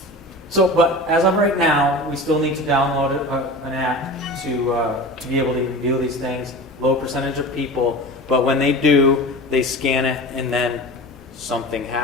So, but as of right now, we still need to download an app to be able to view these things. Low percentage of people, but when they do, they scan it and then something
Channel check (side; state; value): both; normal; correlation 0.33